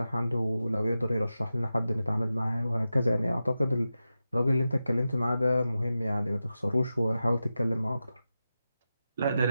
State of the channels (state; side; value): inverted; both; correlation -0.92